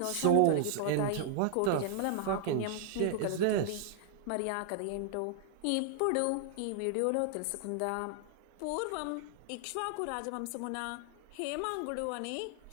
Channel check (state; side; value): different; both; correlation -0.01